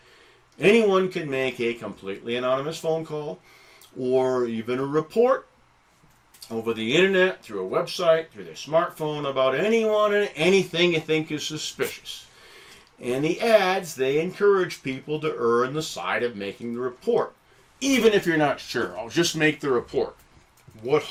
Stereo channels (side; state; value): both; identical; correlation 1.00